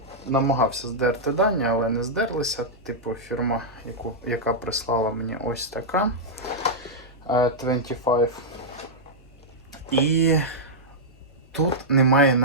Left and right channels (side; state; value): both; normal; correlation -0.08